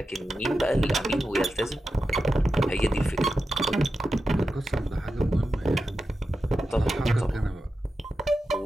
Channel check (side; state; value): both; normal; correlation 0.91